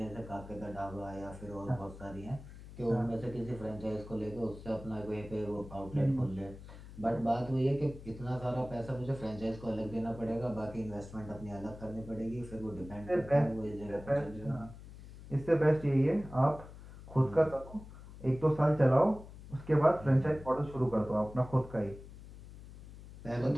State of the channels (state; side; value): noise; left; hum, 16 dB below the sound